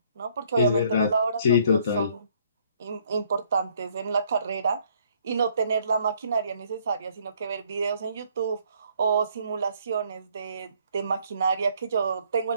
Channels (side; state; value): both; inverted; correlation -0.64